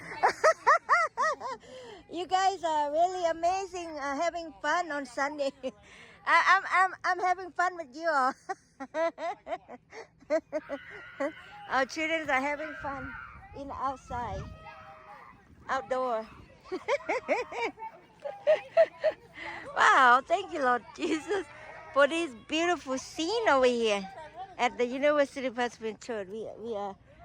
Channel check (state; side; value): identical; both; correlation 1.00